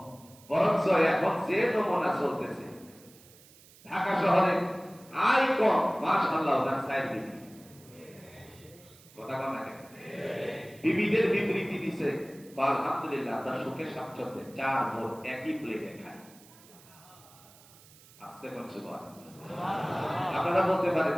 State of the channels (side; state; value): right; noise; hiss, 24 dB below the sound